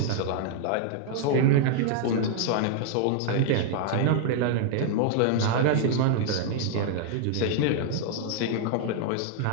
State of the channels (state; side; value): different; both; correlation 0.00